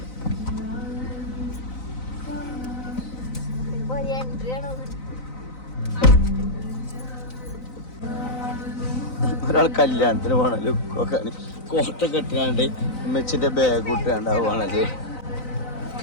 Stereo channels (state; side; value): late; right; 3.9 ms